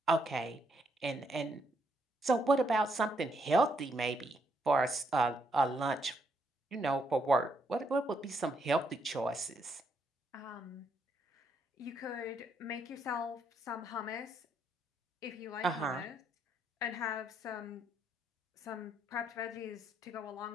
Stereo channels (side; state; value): both; normal; correlation 0.75